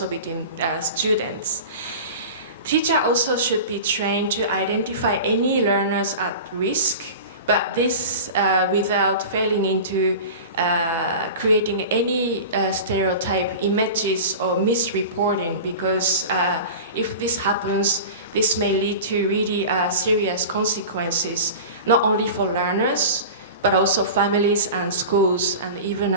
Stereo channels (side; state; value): both; inverted; correlation -0.33